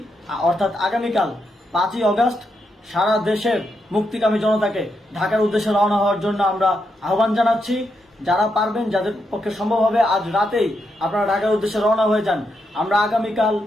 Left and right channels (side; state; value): both; normal; correlation 0.82